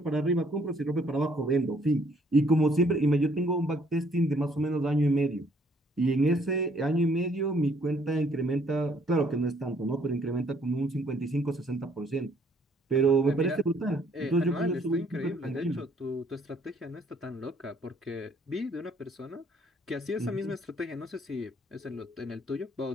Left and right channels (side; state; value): both; normal; correlation 0.64